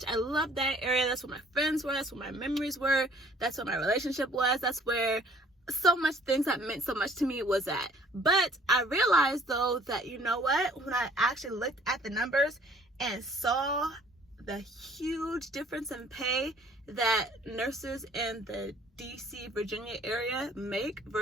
I loved that area. That's where my friends were. That's where my memories were. That's where my relationship was. That's where so much things that meant so much to me was at. But I realized though that, you know what? When I actually looked at the numbers and saw the huge difference in pay that nurses in the DC, Virginia area make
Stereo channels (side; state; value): both; normal; correlation 0.56